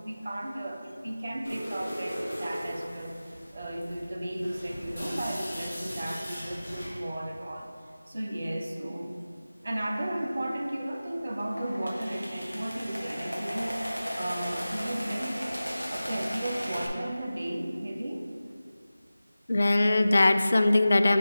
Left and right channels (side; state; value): both; inverted; correlation -0.96